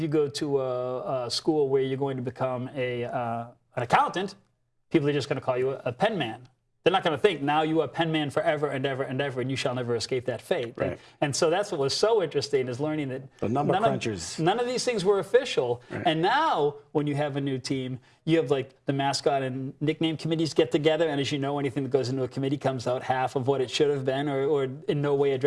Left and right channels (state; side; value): identical; both; correlation 1.00